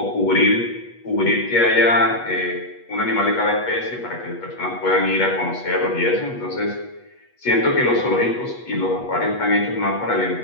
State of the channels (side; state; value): right; late; 8.3 ms